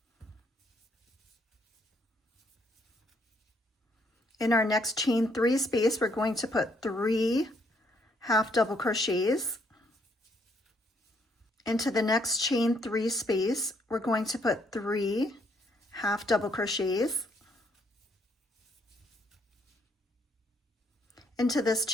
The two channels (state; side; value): normal; both; correlation 0.70